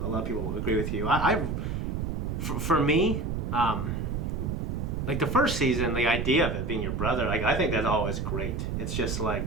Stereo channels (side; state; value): right; noise; rumble, 2 dB below the sound